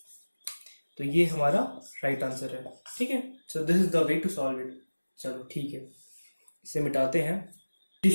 तो ये हमारा राइट आंसर है। ठीक है, so this is the way to solve it. चलो ठीक है, इसे मिटाते हैं,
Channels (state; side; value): inverted; both; correlation -1.00